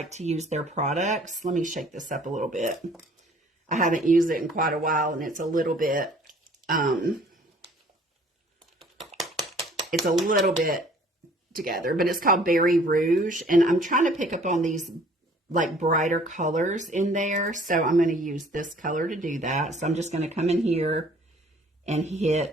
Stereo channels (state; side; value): normal; both; correlation 0.55